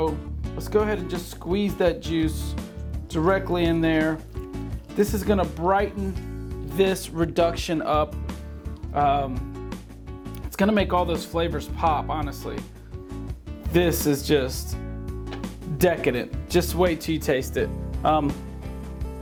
let's go ahead and just squeeze that juice directly in there. This is gonna brighten this reduction up. It's gonna make all those flavors pop, honestly. This is just decadent. Just wait till you taste it.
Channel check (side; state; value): both; identical; correlation 1.00